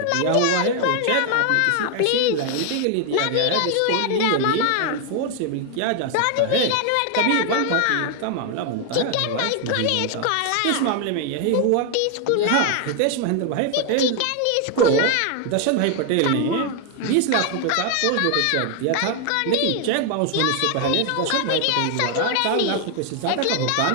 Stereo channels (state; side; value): different; both; correlation 0.01